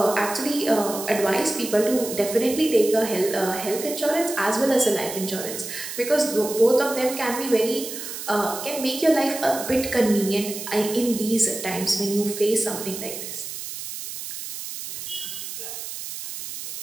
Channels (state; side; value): noise; right; hiss, 8 dB below the sound